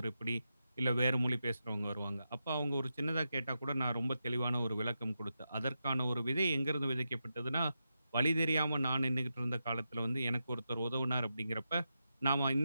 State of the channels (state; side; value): inverted; both; correlation -0.88